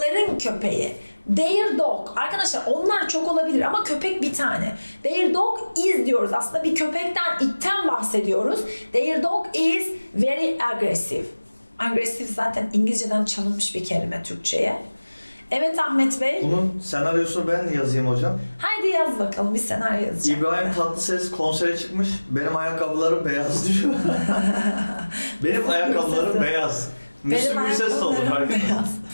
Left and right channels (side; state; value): both; inverted; correlation -1.00